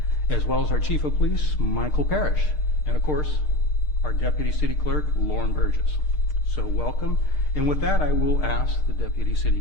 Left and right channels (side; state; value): right; late; 6.6 ms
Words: as well as our Chief of Police Michael Parrish, and of course our Deputy City Clerk Lauren Burgess. So welcome. And with that, I will ask the Deputy